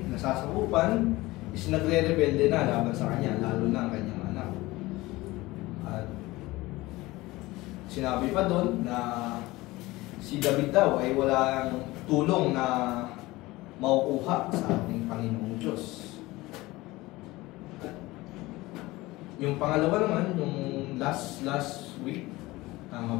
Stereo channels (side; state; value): right; quieter; 19.9 dB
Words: nasasakupan, is nagre-rebelde na laban sa kanya, lalo na ang kanyang anak. At sinabi pa doon na si David daw ay walang tulong na makukuha sa ating Panginoong Diyos. At yung pangalawa naman, yung last week, tama